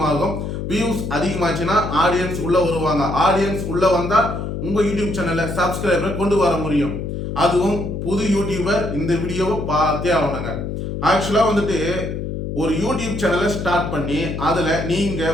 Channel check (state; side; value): noise; left; hum, 5 dB below the sound